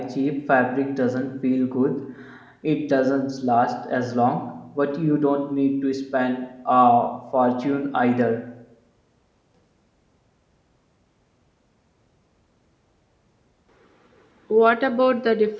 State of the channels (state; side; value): identical; both; correlation 1.00